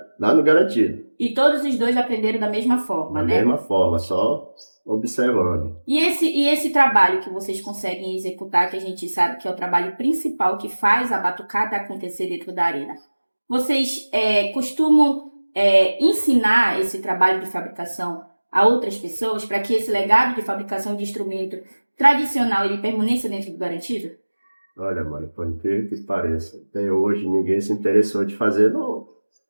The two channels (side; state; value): both; inverted; correlation -1.00